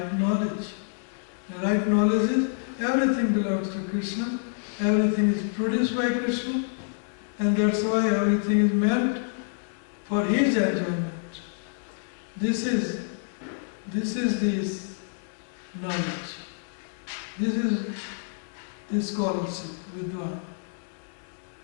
knowledge. The right knowledge is everything belongs to Krishna, everything is produced by Krishna, and that's why everything is meant for His enjoyment. This is this knowledge. This is the scholarship, Vidwan.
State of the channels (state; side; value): silent; right; digital silence